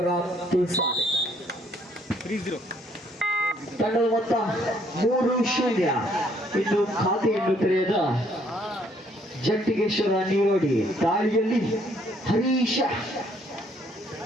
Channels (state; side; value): normal; both; correlation 0.66